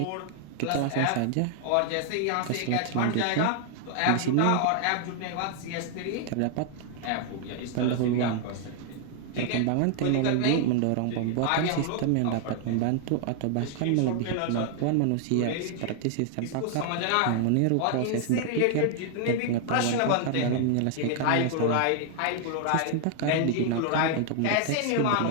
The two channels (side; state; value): both; different; correlation 0.00